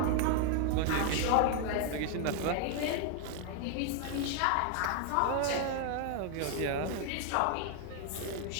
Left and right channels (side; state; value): both; different; correlation 0.00